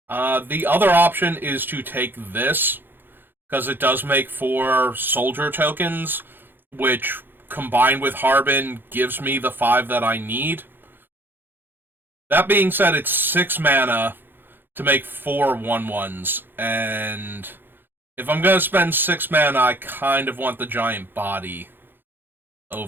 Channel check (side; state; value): left; late; 0.098 ms